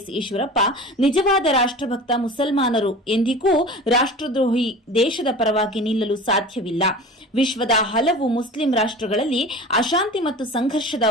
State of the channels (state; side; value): normal; both; correlation 0.37